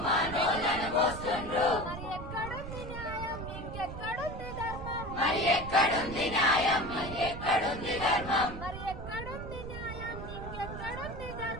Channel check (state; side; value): noise; right; rumble, 9 dB below the sound